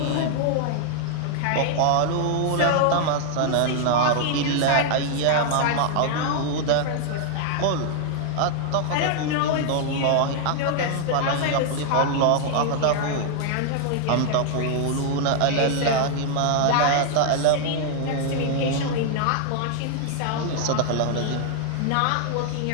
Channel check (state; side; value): different; both; correlation 0.00